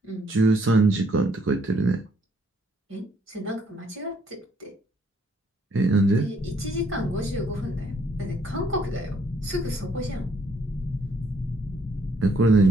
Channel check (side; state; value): both; normal; correlation 0.67